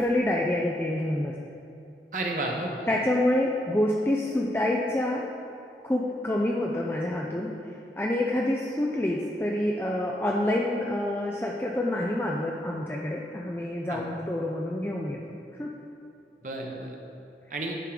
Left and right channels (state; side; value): normal; both; correlation 0.77